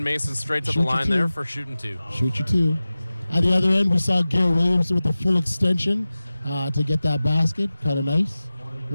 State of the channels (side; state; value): both; inverted; correlation -0.96